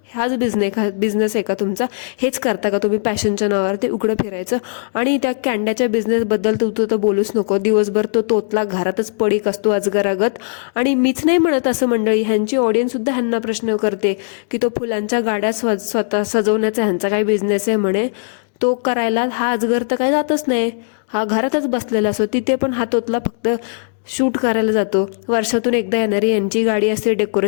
हाच बिझनेस आहे का तुमचा? हेच करता का तुम्ही पॅशनच्या नावावर, ते उघडं फिरायचं? आणि त्या कॅन्ड्याच्या बिझनेसबद्दल तू तर बोलूच नको. दिवसभर तो तोतला घरातच पडीक असतो अजगरागत. आणि मीच नाही म्हणत असं मंडळी, ह्यांची ऑडियन्ससुद्धा ह्यांना प्रश्न करते की तो फुलांच्या गाड्या स्वतः सजवण्याचा ह्यांचा काय बिझनेस आहे म्हणे. तो करायला हा अजगर तर काय जातच नाही, हा घरातच बसलेला असतो. तिथे पण हा तोतला फक्त शूट करायला जातो. वर्षातून एकदा येणारी यांची गाडी असते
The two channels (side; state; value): right; silent; 67 dB below the other